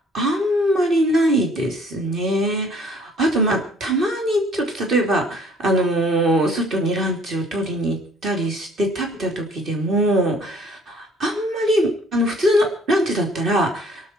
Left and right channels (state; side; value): normal; both; correlation 0.57